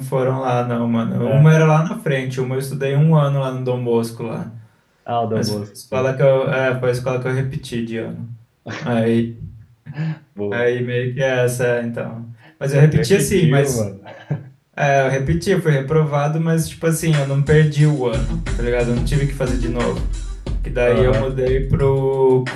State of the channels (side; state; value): both; identical; correlation 1.00